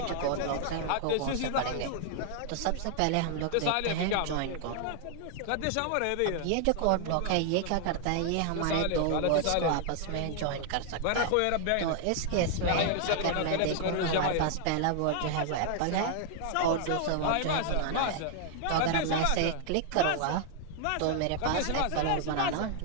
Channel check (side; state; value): both; different; correlation 0.00